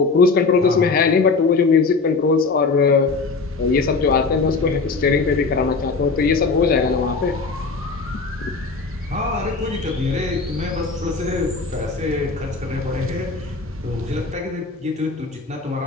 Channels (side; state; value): right; quieter; 4.2 dB